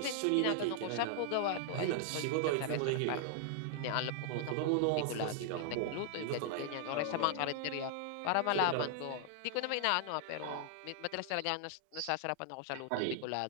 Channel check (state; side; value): different; both; correlation -0.01